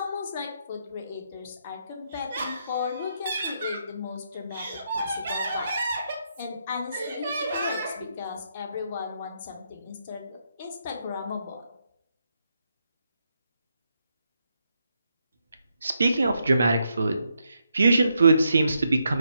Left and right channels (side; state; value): both; inverted; correlation -0.79